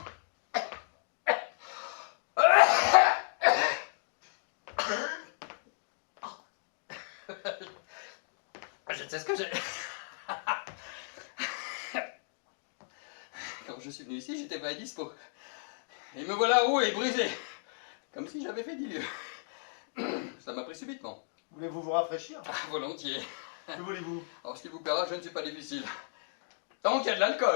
Je sais ce que j'ai. Quand je suis venu ici, j'étais vrai dispo. Et me voilà roué et brisé. Comme si j'avais fait 10 lieues. Ça m'a pris subitement. Voulez-vous vous rafraîchir? Volontiers. Que voulez-vous? Alors, ce qui vous plaira, je ne suis pas difficile. Tant qu'il y a de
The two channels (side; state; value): right; silent; digital silence